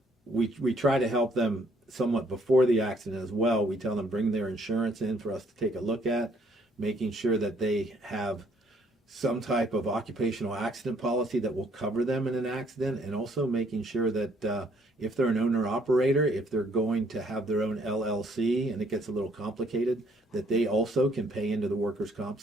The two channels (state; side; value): normal; both; correlation 0.66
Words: try to help them somewhat before the accident as well. We tell them bring their insurance in for us to take a look at, making sure that they have some type of occupational accident policy that will cover them in an accident, and also making sure that if they're an owner-operator, if they're going to have their own LLC and it gets a little complicated, that they also can pay into the workers' comp